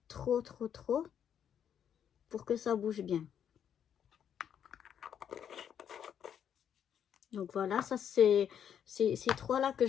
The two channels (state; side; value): quieter; right; 8.8 dB